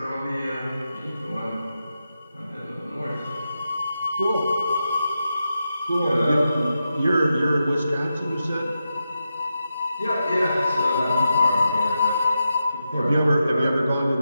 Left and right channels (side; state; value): both; inverted; correlation -0.88